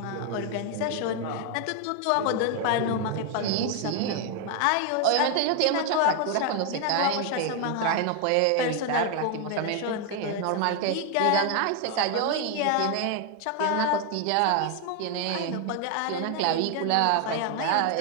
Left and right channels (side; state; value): both; different; correlation 0.01